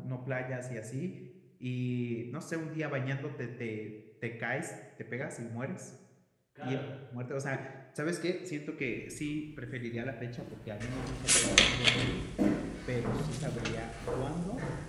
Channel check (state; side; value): identical; both; correlation 1.00